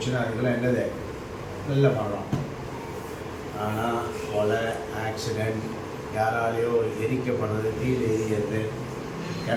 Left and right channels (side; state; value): both; identical; correlation 1.00